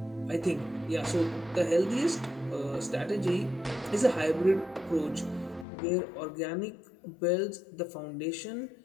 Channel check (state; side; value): drops out; right; at 5.7 s